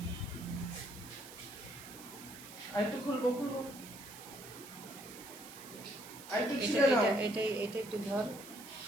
আরেকটু খুলবো খুলবো। আরেকটু এটা ছিঁড়ে নাও। এটা এটা এটা একটু ধর,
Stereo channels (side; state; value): right; noise; hiss, 15 dB below the sound